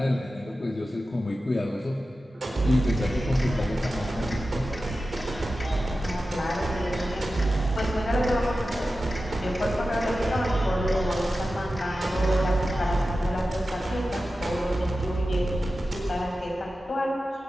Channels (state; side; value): normal; both; correlation 0.93